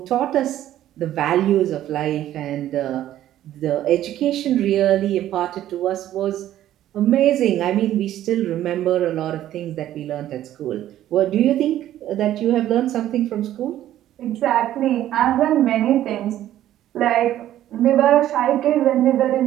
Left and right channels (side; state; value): left; quieter; 12.6 dB